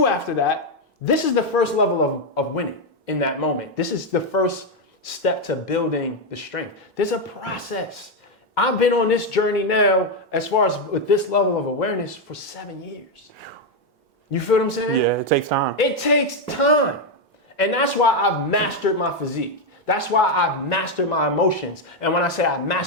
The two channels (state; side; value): normal; both; correlation 0.04